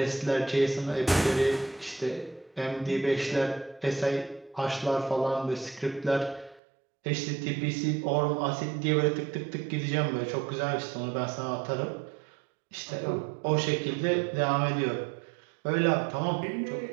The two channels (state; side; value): drops out; left; at 6.6 s